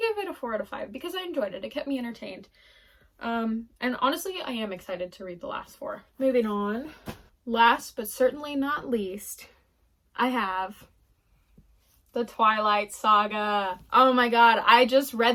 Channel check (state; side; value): identical; both; correlation 1.00